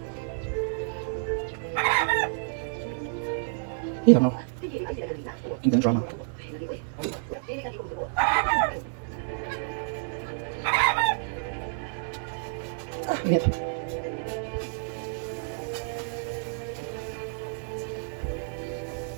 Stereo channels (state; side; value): silent; left; 58 dB below the other